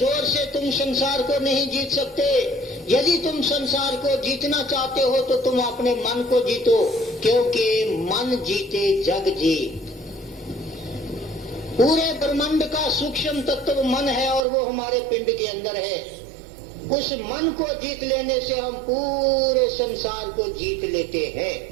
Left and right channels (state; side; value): drops out; left; at 14.5 s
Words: से तुम संसार को नहीं जीत सकते। यदि तुम संसार को जीतना चाहते हो तो तुम अपने मन को जीतो, क्योंकि मन जीते जग जीत। पूरे ब्रह्मांड का सूक्ष्म तत्व मन है और वो हमारे पिंड के अंदर है। उस मन को जीत लेने से हम पूरे संसार को जीत लेते हैं।